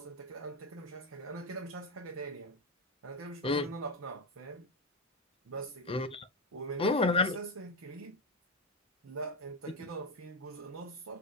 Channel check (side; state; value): both; normal; correlation 0.10